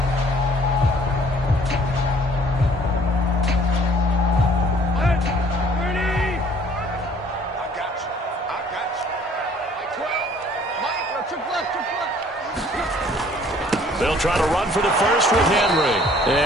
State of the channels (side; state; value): both; normal; correlation 0.57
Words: They'll try to run for the first with Henry.